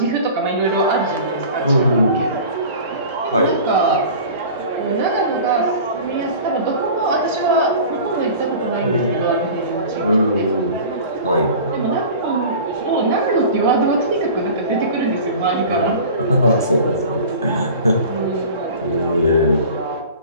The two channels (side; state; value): both; inverted; correlation -0.39